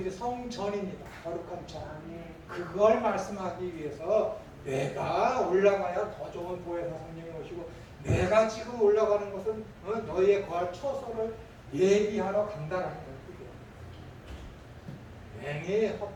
성전입니다. 거룩한 전. 그걸 말씀하기 위해서 내가 올라가야 더 좋은 보혜사 성령이 오시고 내가 지금 올라가는 것은 너희의 거할 처소를 예비하러 간다라는 거예요. 괜히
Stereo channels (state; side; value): identical; both; correlation 1.00